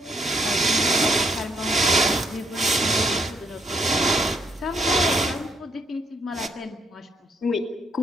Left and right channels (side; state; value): both; normal; correlation 0.73